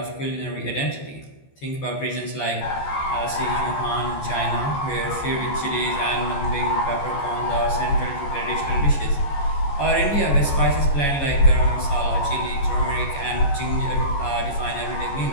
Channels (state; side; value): late; right; 14 ms